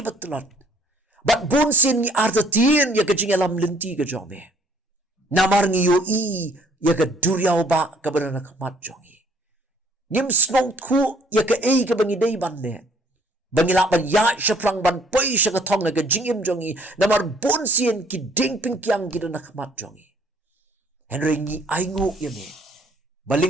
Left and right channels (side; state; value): both; normal; correlation 0.61